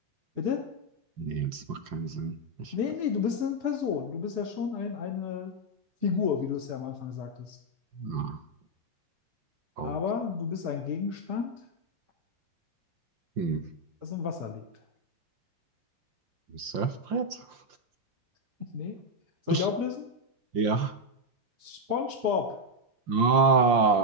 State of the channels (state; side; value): late; left; 5.7 ms